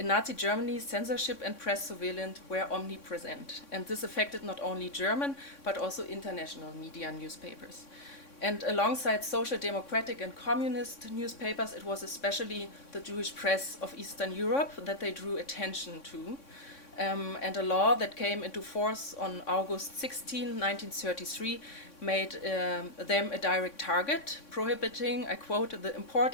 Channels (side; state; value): right; late; 3.6 ms